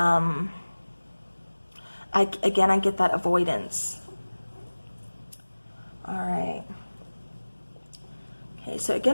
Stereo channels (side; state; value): both; inverted; correlation -1.00